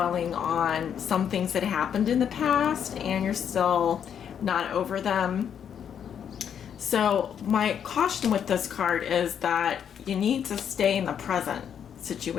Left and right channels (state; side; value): quieter; right; 8.4 dB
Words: on some things that happened in the past and you're still not over them. So my caution with this card is that you need to stay in the present